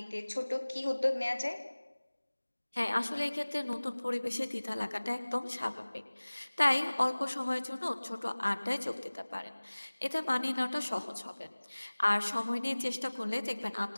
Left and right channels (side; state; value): both; inverted; correlation -1.00